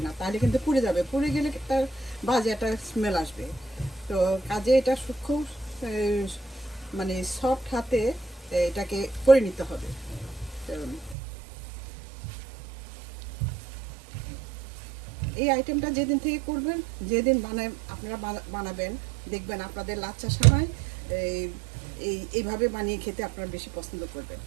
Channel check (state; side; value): drops out; left; at 11.2 s